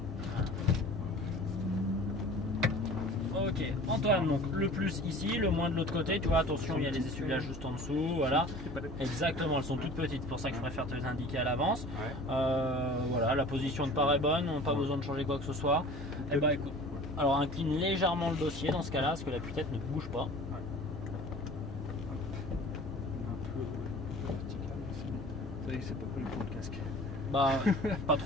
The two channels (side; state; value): both; normal; correlation 0.43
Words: Ok, Antoine, donc le plus ici, le moins de l'autre côté, tu vois, attention, il y a les essuie-glaces juste en dessous, voilà. Exactement, elles sont toutes petites, c'est pour ça que je préfère te les indiquer à l'avance. Ouais. Voilà, la position de part est bonne, on n'a pas besoin de changer quoi que ce soit. Et bah écoute, alors incline légèrement le dossier dans ce cas-là, parce que la tête ne bouge pas. C'est pas collé pour le casque. Bah, pas